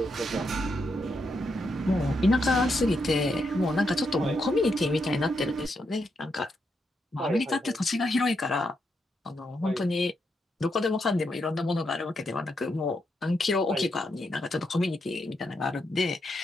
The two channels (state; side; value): normal; both; correlation 0.81